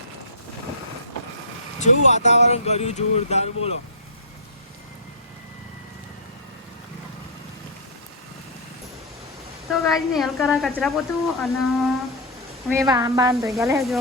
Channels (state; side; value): normal; both; correlation -0.13